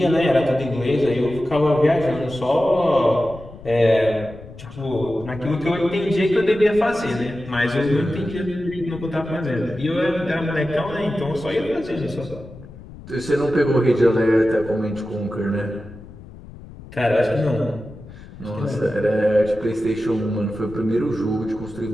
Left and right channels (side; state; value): left; noise; rumble, 17 dB below the sound